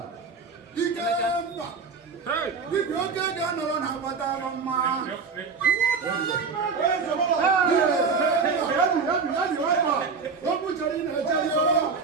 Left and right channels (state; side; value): quieter; left; 5.1 dB